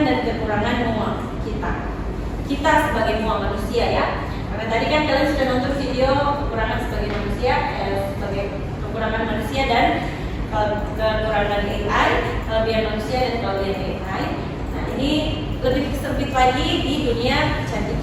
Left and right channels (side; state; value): both; identical; correlation 1.00